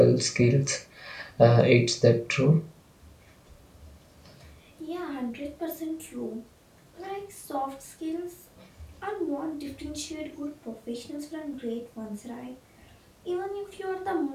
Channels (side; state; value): both; identical; correlation 1.00